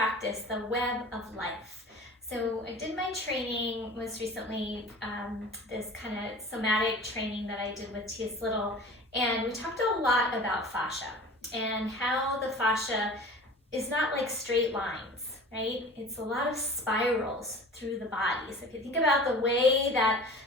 the web of life. So I did my training most recently, this kind of somatic training that I did with T.S. Little, and we talked a lot about fascia and how the fascia is not like straight lines, right? It's a lot of spirals through the body. So if you think about the way that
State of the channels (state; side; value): normal; both; correlation 0.40